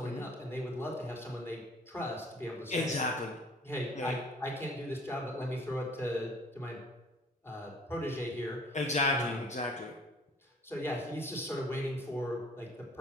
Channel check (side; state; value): both; normal; correlation 0.52